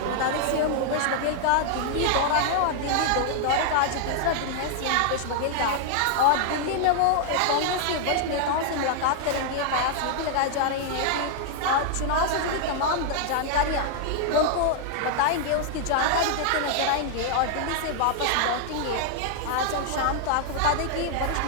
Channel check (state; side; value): different; both; correlation 0.00